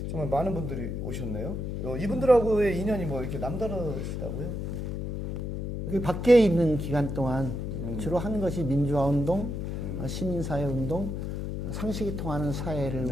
정말 많은 분들이 오셨네요. 이분들하고의 인연이 뭐 이렇게 남다르시다고요? 그 밖에 있는 기간 동안 주로 하는 것이 민주화운동, 시민사회운동, 상식이 통하는 사회를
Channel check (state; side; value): noise; left; hum, 4 dB below the sound